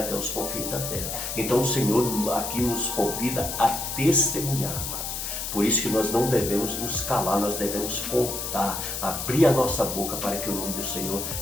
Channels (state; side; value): noise; left; hiss, 4 dB below the sound